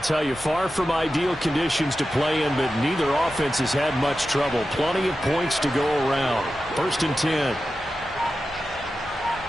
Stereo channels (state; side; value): normal; both; correlation 0.92